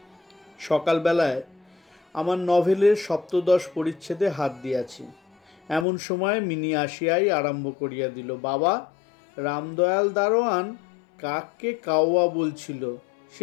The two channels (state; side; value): drops out; right; at 5.9 s